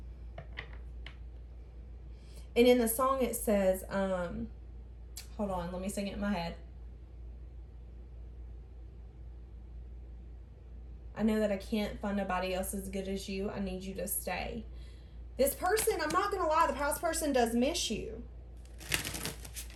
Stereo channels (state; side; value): identical; both; correlation 1.00